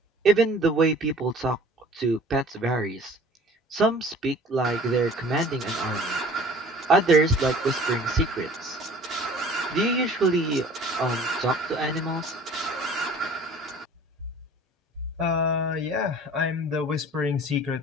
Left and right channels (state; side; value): normal; both; correlation 0.47